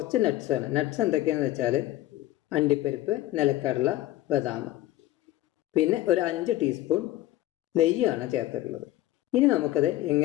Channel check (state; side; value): quieter; right; 15.1 dB